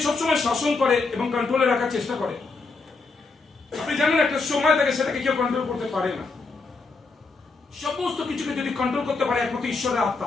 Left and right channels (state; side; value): quieter; right; 4.0 dB